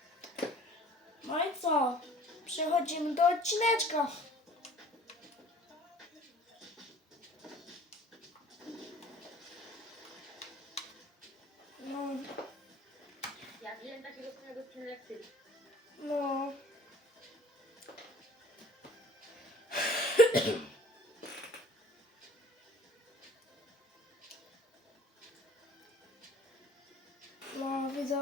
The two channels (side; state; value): both; normal; correlation 0.49